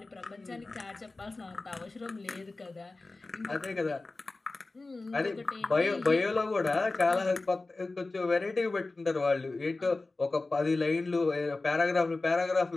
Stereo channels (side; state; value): right; quieter; 3.3 dB